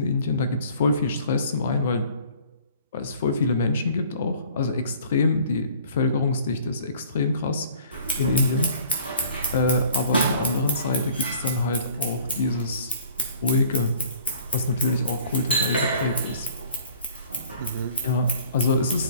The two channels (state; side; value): inverted; both; correlation -0.53